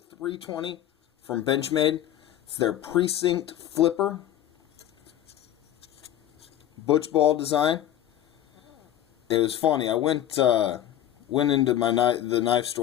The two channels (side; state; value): right; quieter; 11.9 dB